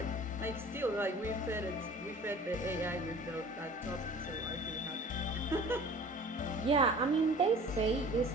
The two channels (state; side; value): normal; both; correlation 0.45